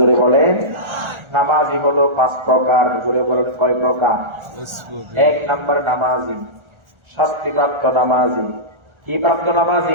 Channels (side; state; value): left; late; 1.4 ms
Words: বলেন। নামাজি হলো 5 প্রকার। জোরে বলেন কয় প্রকার? 1 নাম্বার নামাজি শাস্তিপ্রাপ্ত নামাজি। কি প্রাপ্ত